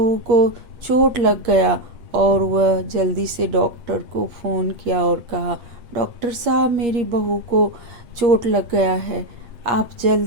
को चोट लग गया। और वह जल्दी से डॉक्टर को फ़ोन किया और कहा, डॉक्टर साहब, मेरी बहू को चोट लग गया है, आप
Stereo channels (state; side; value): late; left; 8.5 ms